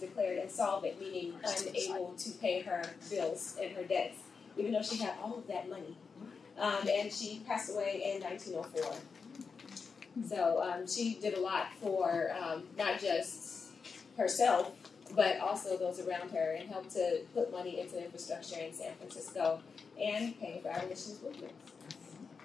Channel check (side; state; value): right; quieter; 5.3 dB